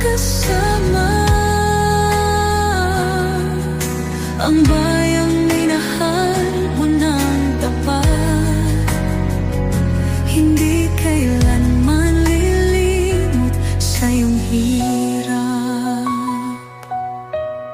kasama. Ang bayang minahal mo ng tapat, hindi kailanman lilimot sa iyong hirap.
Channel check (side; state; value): both; identical; correlation 1.00